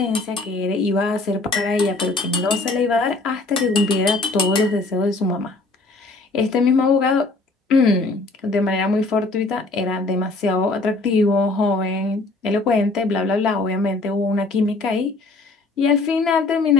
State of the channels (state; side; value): quieter; right; 3.3 dB